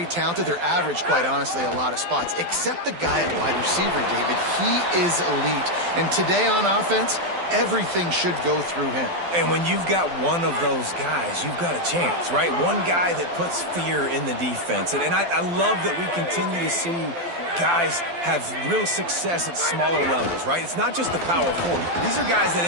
talented. They're average, quite honestly, a lot of spots, except the guy at wide receiver, David. He is elite. And today on offense, everything should go through him. And when you've got one of those guys, you've got a chance, right? One guy that puts fear in the defense. And I love that we continue to see guys have real success at smaller levels, right? It's not just the power forward. These are guys that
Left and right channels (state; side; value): late; left; 12 ms